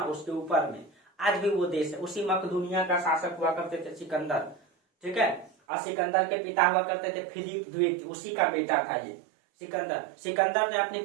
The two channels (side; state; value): left; drops out; at 5.5 s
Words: उसके ऊपर में आज भी वो देश है, उसी मकदूनिया का शासक हुआ करते थे सिकंदर, ठीक है। और सिकंदर के पिता हुआ करते थे फिलिप द्वितीय, उसी का बेटा था ये सिकंदर ने अपने